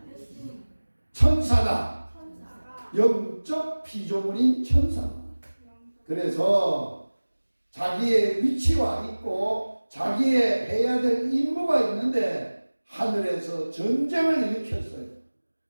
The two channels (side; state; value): both; inverted; correlation -1.00